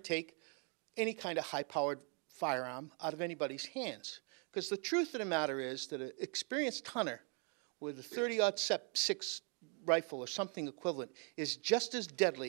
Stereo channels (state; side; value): quieter; left; 38.8 dB